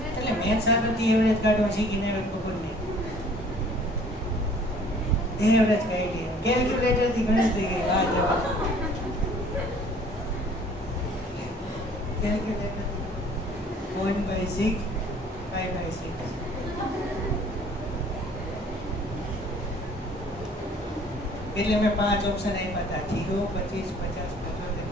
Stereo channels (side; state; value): both; normal; correlation 0.54